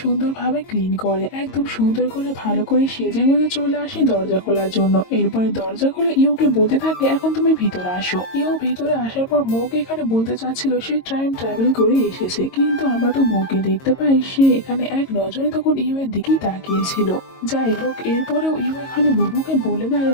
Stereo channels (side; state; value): right; late; 22 ms